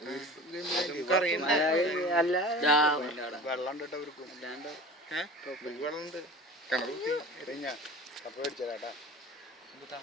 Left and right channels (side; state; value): both; normal; correlation 0.38